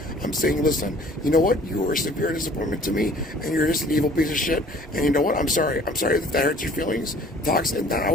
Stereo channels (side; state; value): both; normal; correlation 0.52